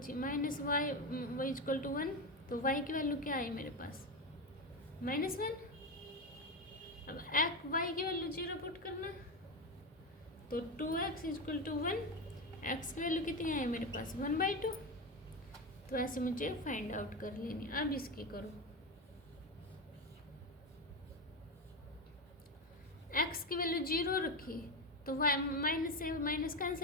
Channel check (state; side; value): normal; both; correlation 0.15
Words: minus y is equal to 1। तो y की वैल्यू क्या आई मेरे पास, -1। अब y की वैल्यू 0 पुट करना, तो 2x is equal to 1, x की वैल्यू कितनी आई मेरे पास 1/2। तो ऐसे मुझे फाइंड आउट कर लेनी। अब इसकी करो, x की वैल्यू 0 रखी तो y माइनस से minus